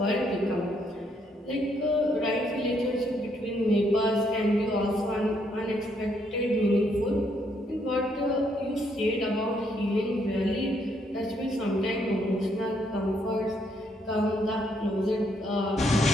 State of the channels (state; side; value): normal; both; correlation 0.73